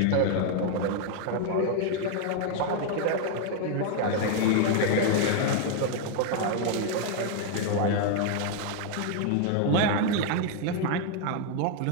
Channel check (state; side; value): different; both; correlation 0.00